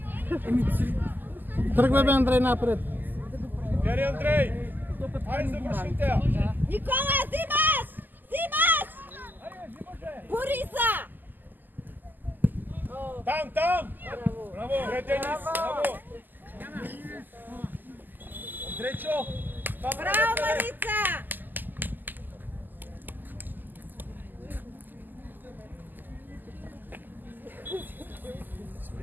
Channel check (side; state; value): left; late; 0.088 ms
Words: Тръгвай бе, Андрей, напред. Дери, Андрей! Айде, завършите я! Никола, взимаш! Взимаш! Бориса! Там, там! Браво! Добре, Денис! Браво! Андрейчо! Браво, Марица!